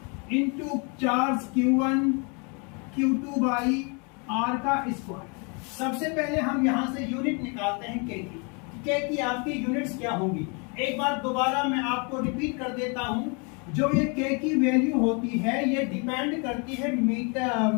into charge Q1 Q2 by R का स्क्वायर। सबसे पहले हम यहां से यूनिट निकालते हैं K की आपकी यूनिट्स क्या होंगी। एक बार दोबारा मैं आपको रिपीट कर देता हूं, जो ये K की वैल्यू होती है ये डिपेंड करती है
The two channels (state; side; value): quieter; right; 33.9 dB